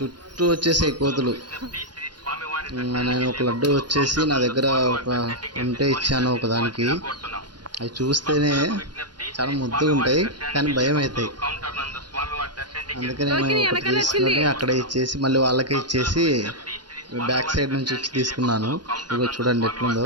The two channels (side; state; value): left; late; 0.70 ms